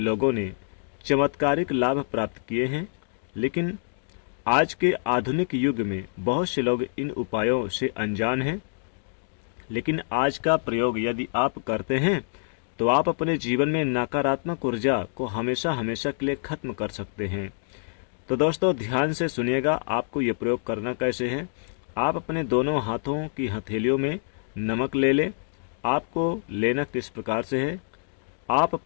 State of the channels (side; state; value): right; silent; digital silence